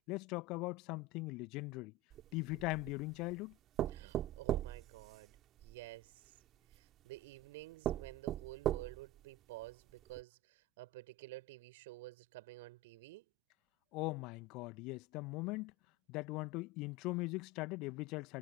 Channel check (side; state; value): both; normal; correlation 0.25